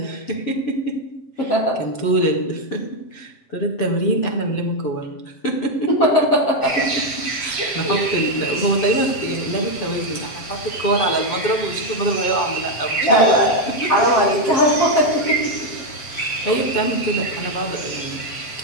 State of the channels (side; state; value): right; late; 7.7 ms